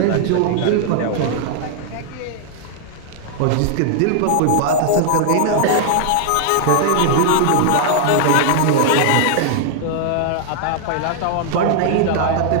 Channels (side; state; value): both; different; correlation 0.00